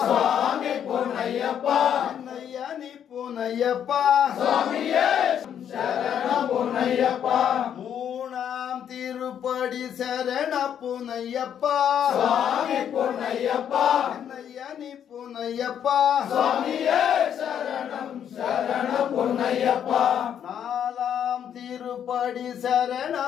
சுவாமி பூனையப்பா நையானி பூனையப்பா சுவாமியே சரணம் பூனையப்பா மூணாம் திருப்படி சரண பூனையப்பா சுவாமி பூனையப்பா நையானி பூனையப்பா சுவாமியே சரணம் சரணம் பூனையப்பா நாலாம் திரு திருப்படி சரண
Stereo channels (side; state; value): right; quieter; 9.1 dB